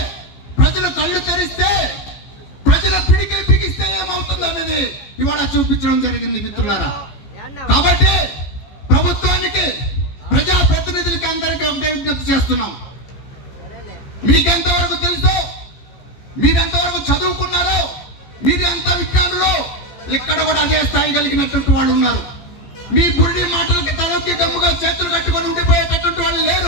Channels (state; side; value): late; right; 14 ms